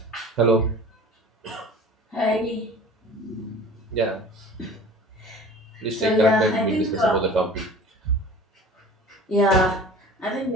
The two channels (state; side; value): normal; both; correlation 0.42